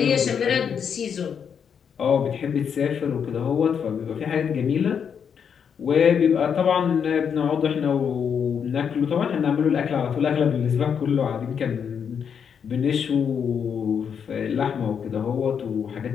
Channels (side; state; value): right; quieter; 7.3 dB